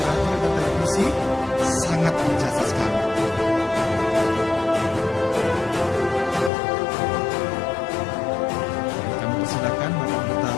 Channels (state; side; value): drops out; right; at 6.5 s